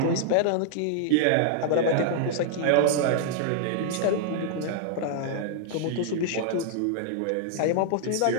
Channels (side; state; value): both; different; correlation -0.01